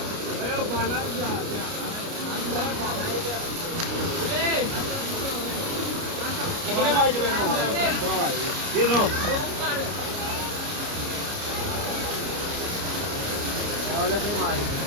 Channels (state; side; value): late; left; 29 ms